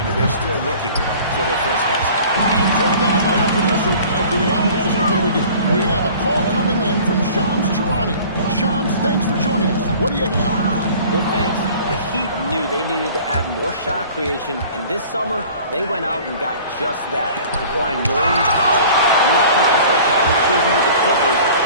and they're still looking for their first basket. And thrown down by our producer. Do we have guys? Okay, we do. We have a call coming in from Shams Charania. Shams, thanks for joining us. What do you have? Well, thanks. The Heat knew they needed to add more shot creation, and this summer, they went out and got just that, acquiring Norton Powell, coming off an all-star caliber season with the Clippers,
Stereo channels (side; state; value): both; inverted; correlation -0.46